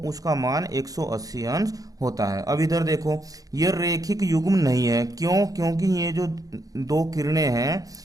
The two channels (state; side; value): late; left; 0.17 ms